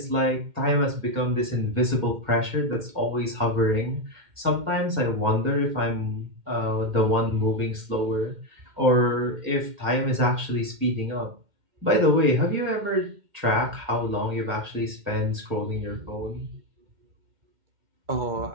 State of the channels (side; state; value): left; late; 2.1 ms